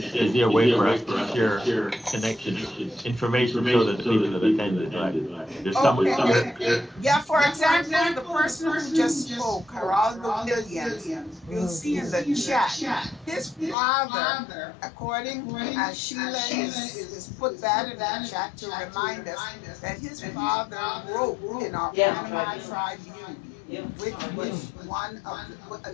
is there a way for us to share connections, information so that the people that attended, right? There's someone here. Yeah, for example, the person who just spoke, Geraldo Williams, you'll see in the chat, his father, according as Sheila is put that in the chat to remind us that his father wrote in our Panama Tribune. Which was one of the,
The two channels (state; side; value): drops out; right; at 13.8 s